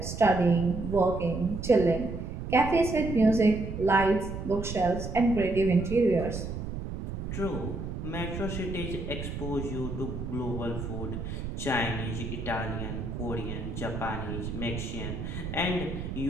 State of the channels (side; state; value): right; noise; rumble, 6 dB below the sound